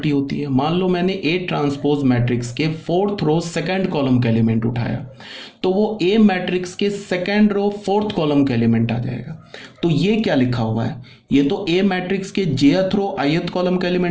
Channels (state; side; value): identical; both; correlation 1.00